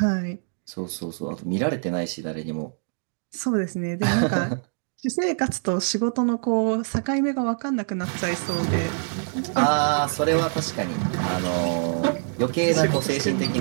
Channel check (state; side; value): silent; left; digital silence